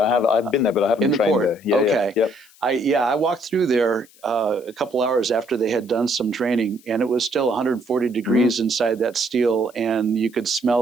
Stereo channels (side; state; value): left; noise; hiss, 27 dB below the sound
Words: been there, but I haven't trained there. Yeah, okay. Yeah, yep. I walked through there a couple hours after they had done some training, and it was still 140 degrees inside that steel, and you could